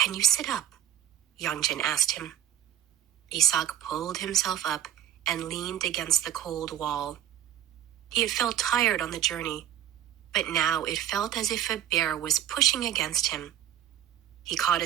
you sit up? Yongjin asked him. Isak pulled himself up and leaned against the cold wall. He had felt tired on the journey, but now it felt as if a bear was pushing against him. He caught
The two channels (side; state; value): left; quieter; 11.1 dB